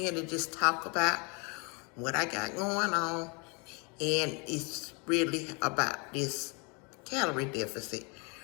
to just talk about what I got going on, and it's really about this calorie deficit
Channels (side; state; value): right; quieter; 31.6 dB